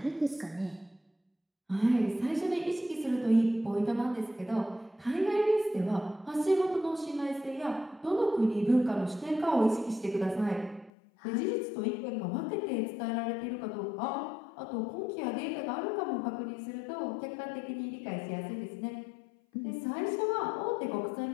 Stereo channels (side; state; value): right; drops out; at 10.9 s